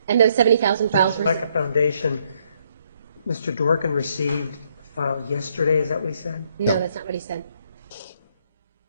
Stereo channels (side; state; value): both; inverted; correlation -0.71